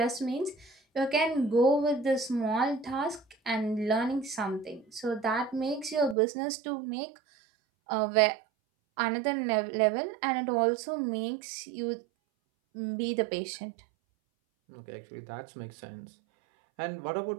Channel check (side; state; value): left; drops out; at 6.2 s